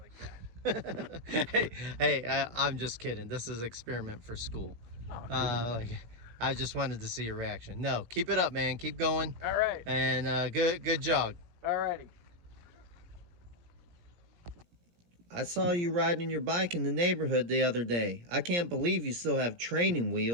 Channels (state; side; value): late; left; 17 ms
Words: that? hey, I'm just kidding. This is experiment for school. Oh, cool. I just wanted to see your reaction. No, keep it up, man. Keep going. All right. And good jog. All righty. I saw you riding your bike in the neighborhood the other day. I can't believe you still have training